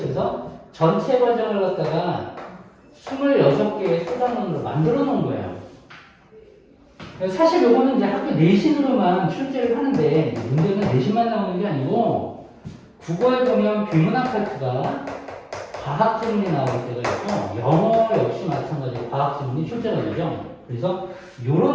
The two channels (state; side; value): identical; both; correlation 1.00